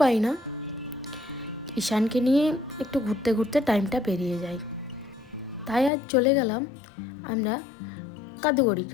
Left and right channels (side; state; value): right; drops out; at 5.9 s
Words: না, ঈশানকে নিয়ে একটু ঘুরতে ঘুরতে টাইমটা পেরিয়ে যায়। তাই আজ চলে গেলাম আমরা কাদুগড়ির